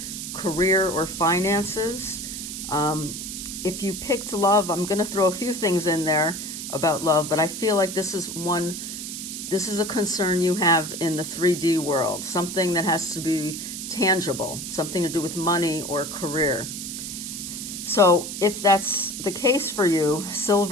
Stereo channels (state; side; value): noise; right; hiss, 7 dB below the sound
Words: career or finances. If you picked love, I'm going to throw a few things in there about love, but I feel like this is a concern you have in the 3D world, something that has to be tangible, something to do with money or career. So if that's the case for you,